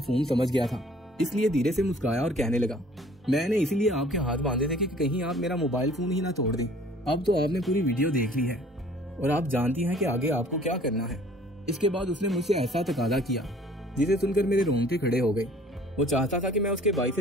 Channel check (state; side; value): normal; both; correlation 0.53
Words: समझ गया था, इसलिए धीरे से मुस्कुराया और कहने लगा, मैंने इसीलिए आपके हाथ बांधे थे कि कहीं आप मेरा मोबाइल फोन ही ना तोड़ दें। अब तो आपने पूरी वीडियो देख ली है और आप जानती हैं कि आगे आपको क्या करना है। इसके बाद उसने मुझसे ऐसा तकादा किया जिसे सुनकर मेरे रोंगटे खड़े हो गए। वो चाहता था कि मैं उसके भाई